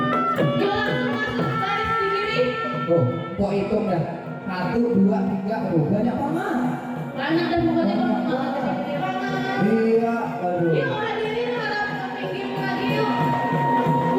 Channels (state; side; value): identical; both; correlation 1.00